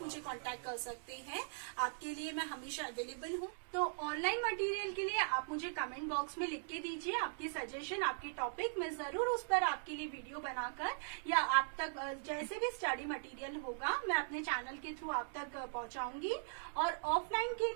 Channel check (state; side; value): silent; left; digital silence